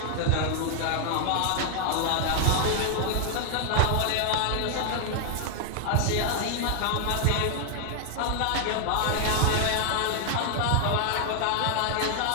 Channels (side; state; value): both; different; correlation 0.00